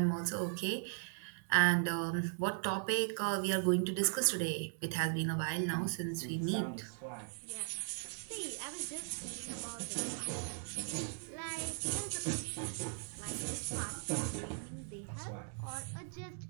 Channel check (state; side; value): silent; left; digital silence